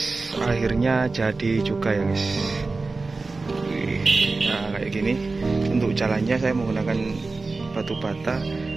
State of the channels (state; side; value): quieter; left; 3.7 dB